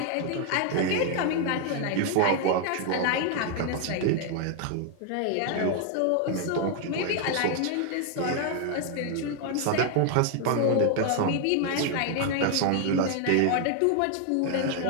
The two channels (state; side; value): different; both; correlation 0.00